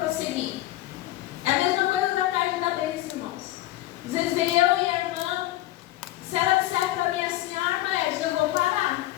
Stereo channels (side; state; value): right; quieter; 15.8 dB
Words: É a mesma coisa da tarde da bênção, irmãos. Às vezes vem eu e a irmã, se ela disser para mim assim: ah, irmã Edna, eu vou parar.